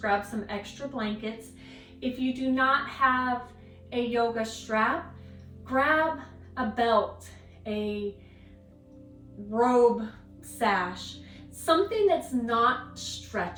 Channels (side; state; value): both; identical; correlation 1.00